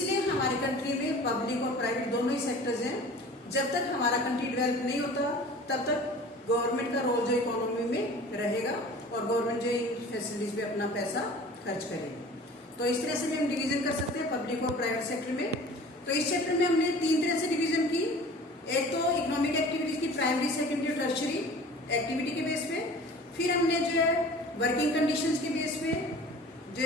हमारी कंट्री में पब्लिक और प्राइवेट दोनों ही सेक्टर्स हैं। जब तक हमारा कंट्री डेवलप नहीं होता तब तक गवर्नमेंट का रोल जो इकोनॉमी में रहेगा और गवर्नमेंट जो इन फैसिलिटीज पे अपना पैसा खर्च करेगी। तो इस तरह से भी हम डिवीजन कर सकते हैं पब्लिक और प्राइवेट सेक्टर में। तो इस चैप्टर में हमने 3 तरह से डिवीजन की। एक तो इकोनॉमिक एक्टिविटीज की प्राइमरी, सेकेंडरी और टर्शरी एक्टिविटी के बेस पे, फिर हमने जो है वर्किंग कंडीशंस के बेस पे जो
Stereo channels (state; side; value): normal; both; correlation 0.43